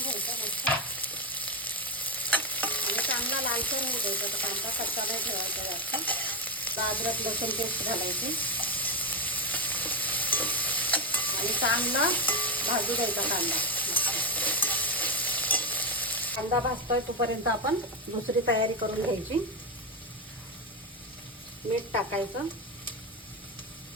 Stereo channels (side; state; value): both; normal; correlation 0.08